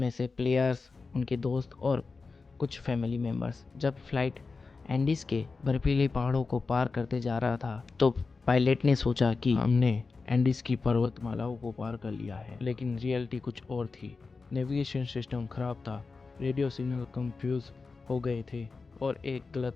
से प्लेयर्स, उनके दोस्त और कुछ फैमिली मेंबर्स। जब फ्लाइट एंडीज के बर्फीले पहाड़ों को पार करते जा रहा था तो पायलट ने सोचा कि हमने एंडीज की पर्वतमालाओं को पार कर लिया है, लेकिन रियलिटी कुछ और थी। नेविगेशन सिस्टम खराब था, रेडियो सिग्नल कंफ्यूज हो गए थे और एक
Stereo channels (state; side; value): quieter; right; 4.3 dB